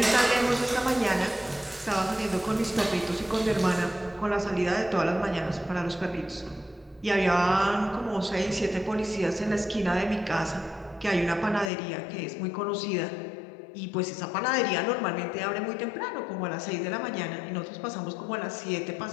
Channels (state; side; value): drops out; right; at 11.7 s